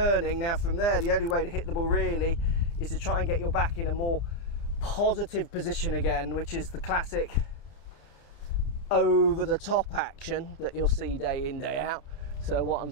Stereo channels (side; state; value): right; late; 30 ms